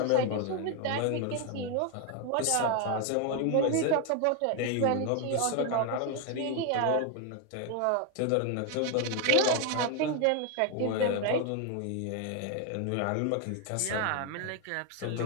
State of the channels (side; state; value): both; different; correlation 0.01